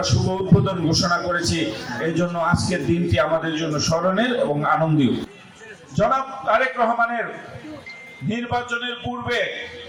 শুভ উদ্বোধন ঘোষণা করেছি। এই জন্য আজকের দিনটি আমাদের জন্য স্মরণের এবং আনন্দীয়। জনাব তারেক রহমানের নির্বাচনের পূর্বে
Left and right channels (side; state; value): both; identical; correlation 1.00